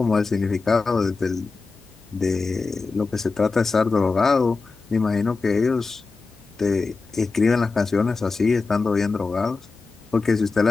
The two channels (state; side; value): quieter; right; 4.1 dB